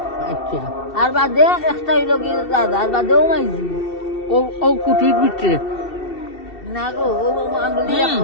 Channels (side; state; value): right; late; 2.7 ms